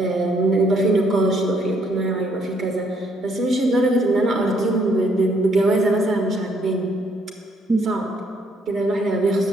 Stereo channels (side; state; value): both; normal; correlation 0.69